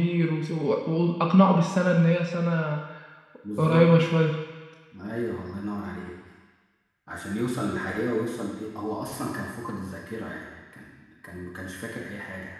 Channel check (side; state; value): both; identical; correlation 1.00